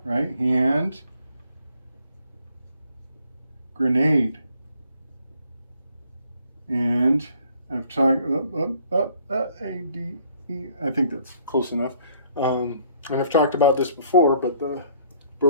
right? Hand, grenade. And I've talked, A-D-E, I think that's close enough. And I've talked about this before, but the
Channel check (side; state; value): both; inverted; correlation -0.62